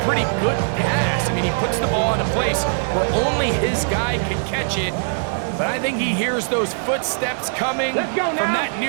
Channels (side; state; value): left; silent; digital silence